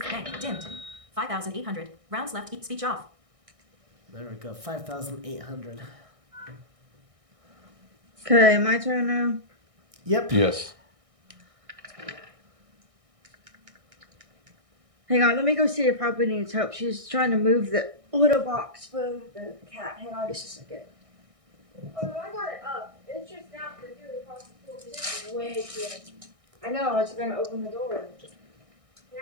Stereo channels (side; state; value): left; late; 1.6 ms